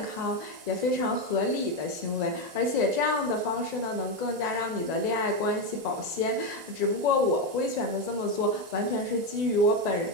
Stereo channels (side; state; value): left; late; 1.9 ms